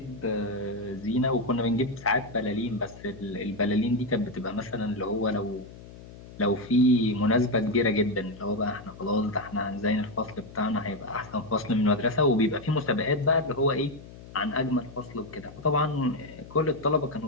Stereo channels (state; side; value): noise; left; hum, 17 dB below the sound